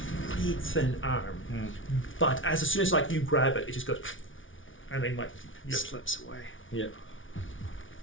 really thin arm, but as soon as like you grab it, it just goes, and then like Slips away. Yep.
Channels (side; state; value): right; late; 0.57 ms